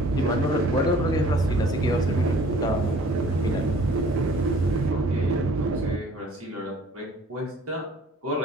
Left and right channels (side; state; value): both; normal; correlation 0.53